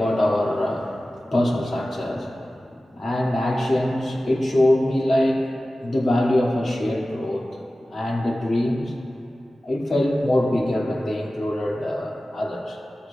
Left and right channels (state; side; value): normal; both; correlation 0.96